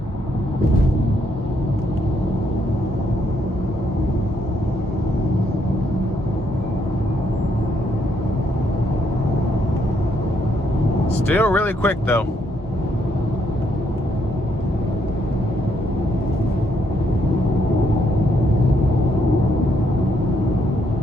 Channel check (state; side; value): normal; both; correlation 0.74